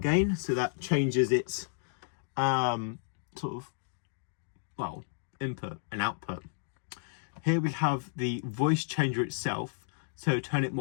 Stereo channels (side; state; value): right; silent; digital silence